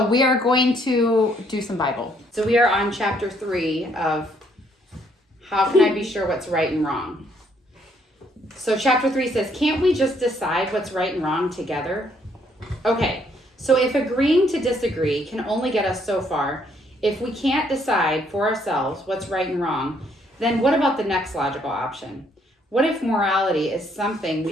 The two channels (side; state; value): both; normal; correlation 0.68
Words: we are going to do some Bible. So we are on chapter 3 of How Can I Be Sure What's Right and Wrong? So chapter 3 says, can't we just decide what's right and wrong together? Okay, so if agreeing to disagree can only get us so far, if we can't decide for ourselves what's right and wrong, then what about the next logical option? What if morality is something